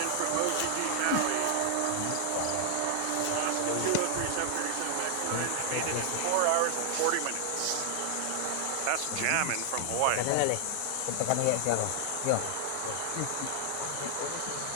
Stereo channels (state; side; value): different; both; correlation 0.00